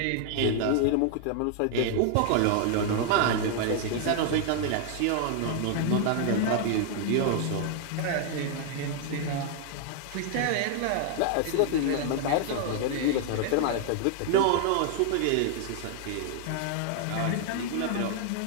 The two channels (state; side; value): different; both; correlation 0.00